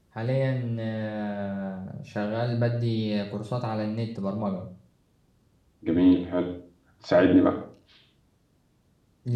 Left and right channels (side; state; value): both; identical; correlation 1.00